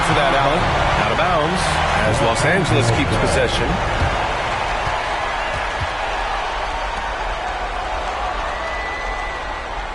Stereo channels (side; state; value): both; identical; correlation 1.00